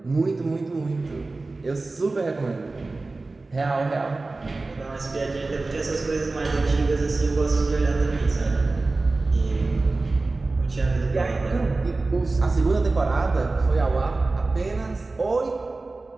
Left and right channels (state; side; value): quieter; left; 3.4 dB